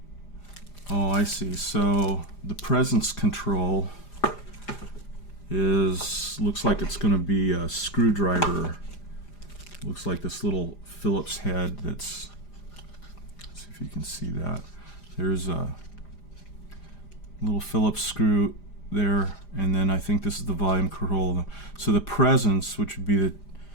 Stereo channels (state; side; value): late; right; 5.0 ms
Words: oh, I see. So the presence control looks like it's going to be a screwdriver. Looks like this little Phillips head that's, let's see if you can see that. There's a little Phillips screw there, and then I think this is the volume control. So the presence, which would be